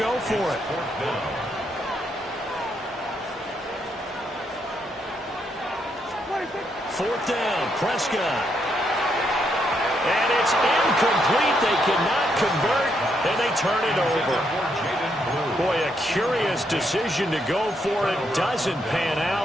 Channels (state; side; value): normal; both; correlation 0.77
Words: go for it. Fourth down, Prescott. And it's incomplete. They cannot convert, and they turn it over. Boy, a curious decision to go for it. Doesn't pan